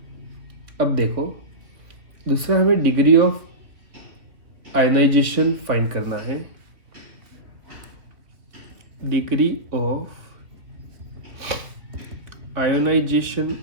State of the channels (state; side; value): late; left; 2.8 ms